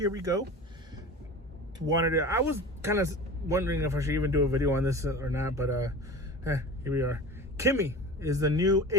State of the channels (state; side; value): normal; both; correlation 0.35